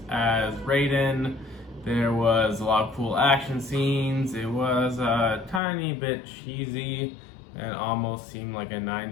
as Raiden. There was a lot of cool action scenes. It was a tiny bit cheesy and almost seemed like a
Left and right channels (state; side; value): drops out; right; at 5.6 s